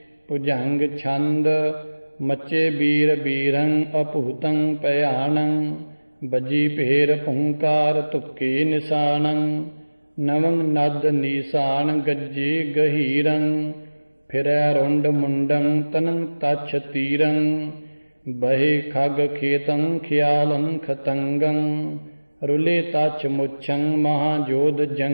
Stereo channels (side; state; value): both; inverted; correlation -1.00